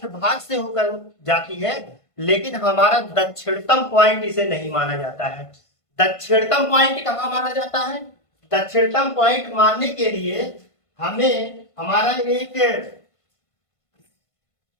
भाग से होकर जाती है, लेकिन हमारा दक्षिणतम पॉइंट इसे नहीं माना जाता है। दक्षिणतम पॉइंट कहाँ माना जाता है, दक्षिणतम पॉइंट मानने के लिए हमें हमारा एक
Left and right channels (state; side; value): late; right; 1.5 ms